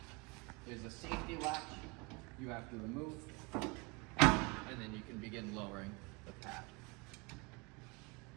There's a safety latch you have to remove, and then you can begin lowering the pad.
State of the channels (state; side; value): quieter; left; 28.3 dB